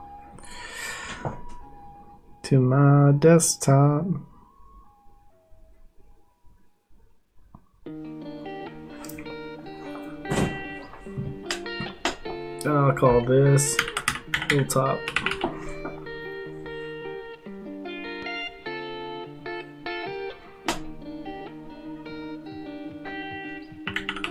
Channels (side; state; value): both; identical; correlation 1.00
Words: to my desktop. I'll call this hilltop.